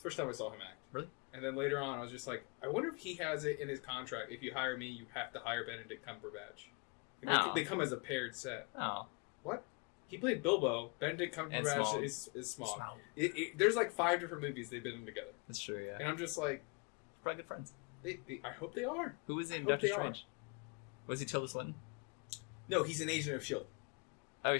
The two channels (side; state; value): right; quieter; 33.0 dB